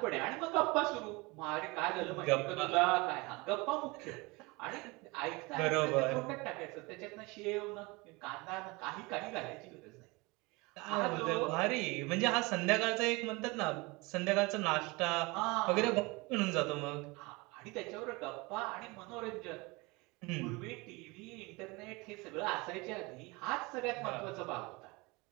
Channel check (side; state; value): left; quieter; 25.2 dB